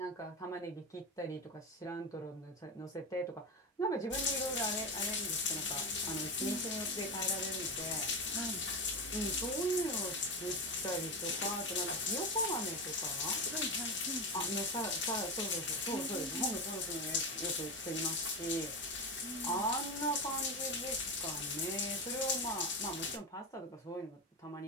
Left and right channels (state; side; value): normal; both; correlation 0.19